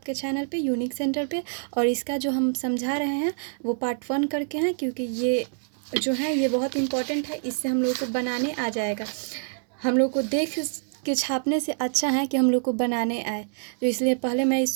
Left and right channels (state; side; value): silent; left; digital silence